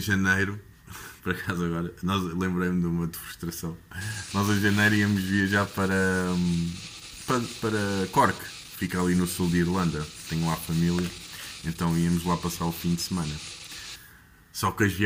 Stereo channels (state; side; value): identical; both; correlation 1.00